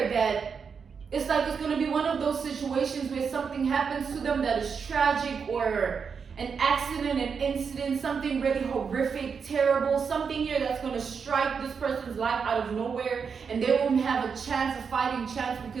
that it's like it's going to be one of those situations where something happens to them that is tragic, or an accident, an incident, something really horrific, terrible, something here that's going to strike this person's life out of nowhere, and they won't have a chance, a fighting chance,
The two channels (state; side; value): quieter; left; 6.0 dB